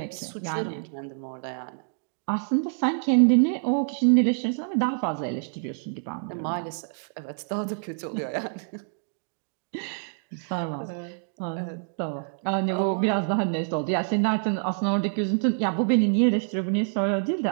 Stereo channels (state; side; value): silent; left; digital silence